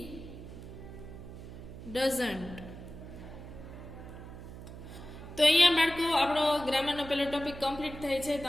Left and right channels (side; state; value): right; noise; hum, 13 dB below the sound